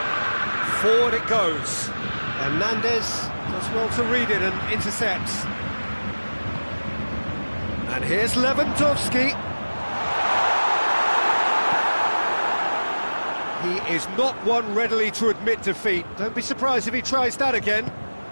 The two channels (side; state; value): both; inverted; correlation -1.00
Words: Forward it goes. Hernandez does well to read it and intercepts. And here's Lewandowski. is not one readily to admit defeat. Don't be surprised if he tries that again.